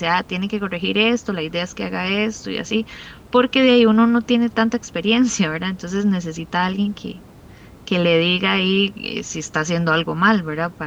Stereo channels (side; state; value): both; identical; correlation 1.00